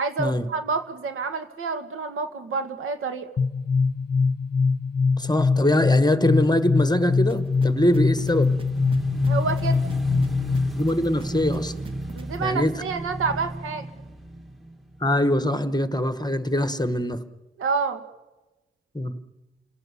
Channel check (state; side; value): normal; both; correlation 0.73